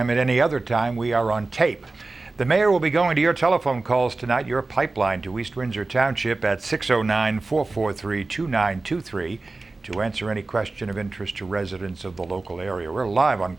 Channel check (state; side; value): quieter; left; 3.4 dB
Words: at any other time, we are on tape. The mayor will be going to your telephone calls tonight, your pipeline to East Windsor Township at 609-443-2923 to answer any question of interest to residents of the local area. We're live on